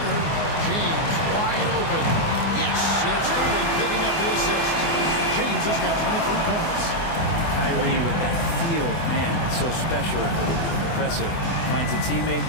James wide open. Yes, and it's Irving picking up the assist. James has got 23 points. Kyrie with that feel, man, it's so special, impressive. Finds a teammate,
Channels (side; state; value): right; late; 24 ms